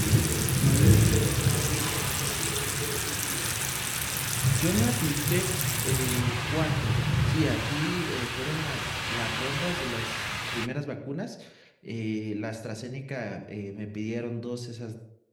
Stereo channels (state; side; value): identical; both; correlation 1.00